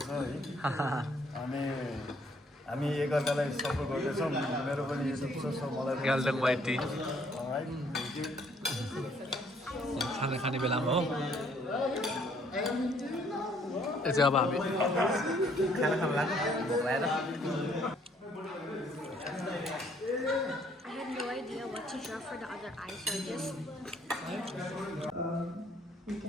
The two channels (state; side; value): normal; both; correlation 0.64